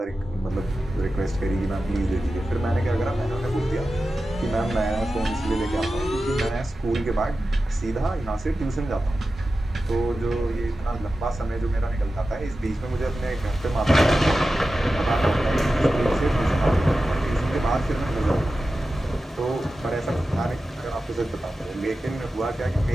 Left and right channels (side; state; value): both; normal; correlation 0.93